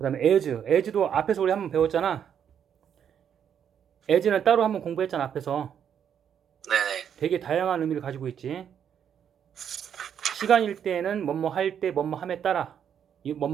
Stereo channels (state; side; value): quieter; left; 8.5 dB